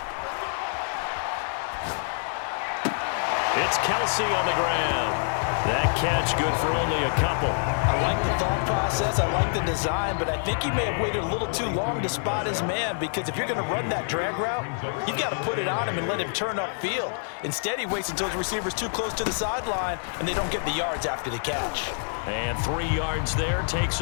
It's Kelsey on the ground. That catch good for only a couple. I like the thought process. I like the design, but I think he may have waited a little too long to spot his man, because if you're going to run that drag route, you've got to put it on him and let him turn upfield. Instead, he waits until his receiver's too close to the sideline, and they don't get the yards after the catch. And 3 yards there takes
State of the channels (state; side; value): silent; right; digital silence